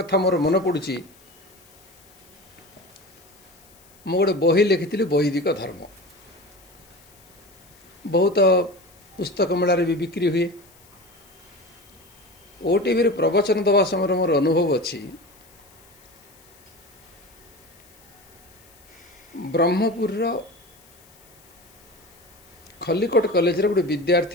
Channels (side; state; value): left; noise; hiss, 27 dB below the sound